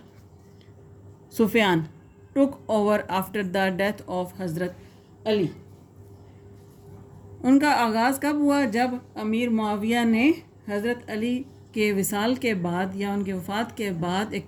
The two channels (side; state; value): both; identical; correlation 1.00